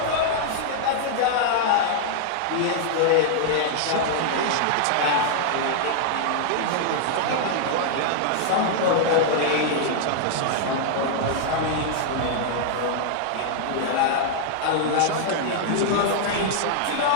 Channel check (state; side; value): different; both; correlation -0.01